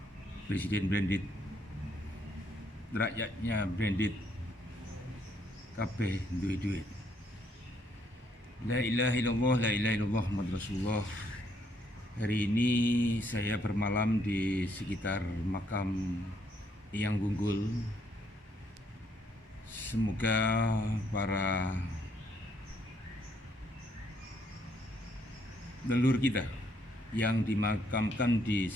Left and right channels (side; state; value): both; normal; correlation 0.70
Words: Presiden Branded, rakyatnya Branded, kabeh duwe duit. La ilaha illallah, la ilaha illallah, Muhammad Rasulullah. Hari ini saya bermalam di sekitar makam Eyang Gunggul. Semoga para leluhur kita yang dimakamkan di